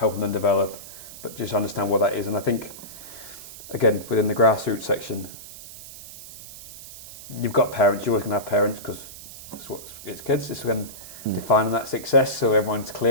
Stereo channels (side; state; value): right; noise; hiss, 15 dB below the sound